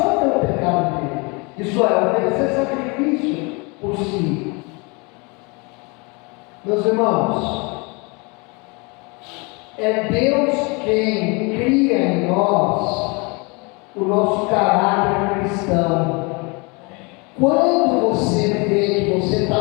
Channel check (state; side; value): quieter; right; 29.5 dB